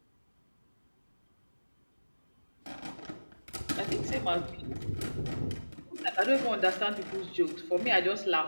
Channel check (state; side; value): inverted; both; correlation -1.00